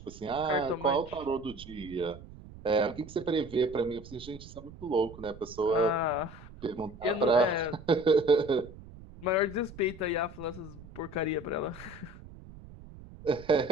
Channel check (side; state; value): right; noise; rumble, 17 dB below the sound